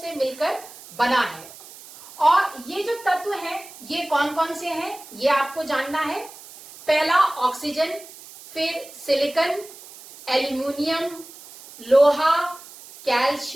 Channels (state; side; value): noise; right; hiss, 18 dB below the sound